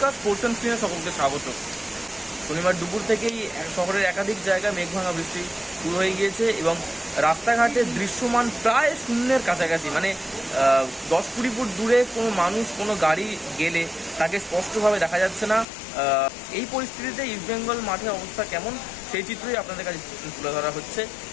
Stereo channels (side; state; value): right; drops out; at 15.7 s